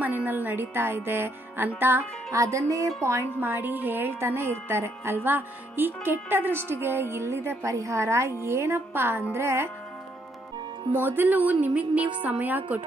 ಮನೆಯಲ್ಲಿ ನಡೀತಾ ಇದೆ ಅಂತ ಅದನ್ನೇ ಪಾಯಿಂಟ್ ಮಾಡಿ ಹೇಳ್ತಾನೆ ಇರ್ತಾರೆ ಅಲ್ವಾ? ಈ ಕೆಟ್ಟ ದೃಷ್ಟಿಗೆ ಇಲ್ಲಿದೆ ಪರಿಹಾರ. ಏನಪ್ಪಾ ಅಂದ್ರೆ, ಮೊದಲು ನಿಮಗ್ ನೀವು ಸಮಯ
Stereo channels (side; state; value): both; normal; correlation 0.72